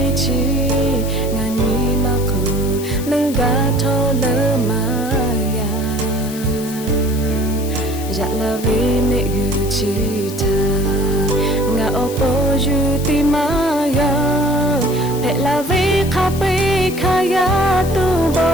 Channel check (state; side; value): noise; left; hiss, 13 dB below the sound